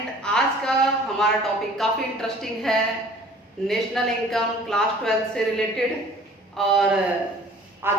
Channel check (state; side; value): normal; both; correlation 0.50